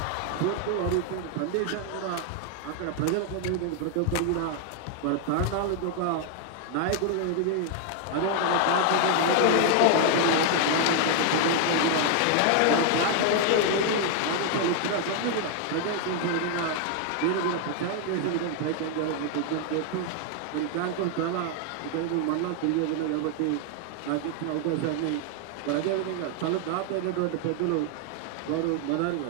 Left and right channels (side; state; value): both; different; correlation 0.00